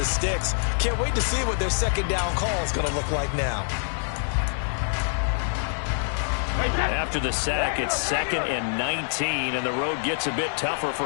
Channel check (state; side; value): silent; right; 61 dB below the other